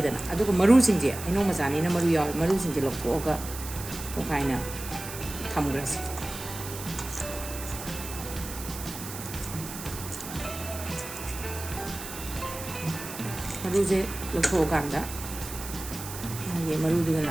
अदुगा मरुसिंजे हैनौ मचानीना मरु याव मरुसिंजे लौथोगा तोखाइना थमग्रसे मरुजे लौथोगांदा ये मरुदुगा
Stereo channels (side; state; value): right; noise; hiss, 10 dB below the sound